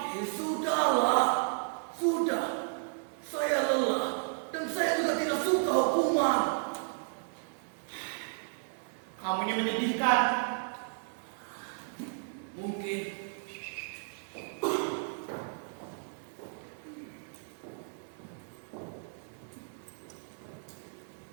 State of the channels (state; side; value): silent; left; digital silence